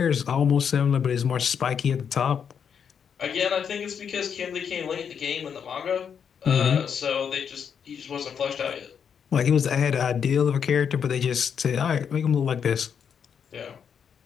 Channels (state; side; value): quieter; right; 7.4 dB